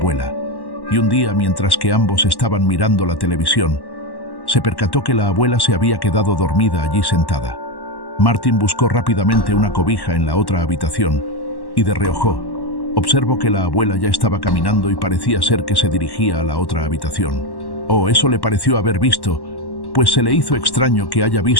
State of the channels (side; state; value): right; late; 1.1 ms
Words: y un día, mientras que ambos estaban mirando la televisión, se percató que la abuela se había quedado dormida allí sentada. Martín buscó rápidamente una cobija en la otra habitación y de reojo observó que la abuela ya estaba caminando y parecía ser que se dirigía a la otra habitación. Eso le pareció haber visto, pues se le hizo extraño que haya